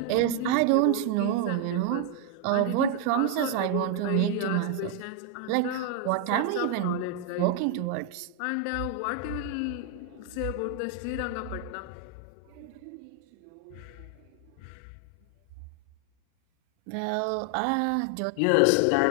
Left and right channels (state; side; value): different; both; correlation 0.01